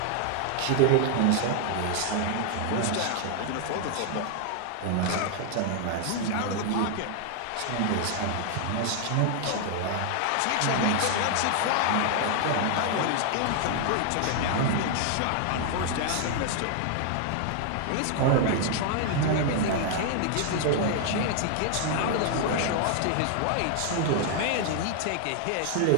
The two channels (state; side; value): different; both; correlation 0.00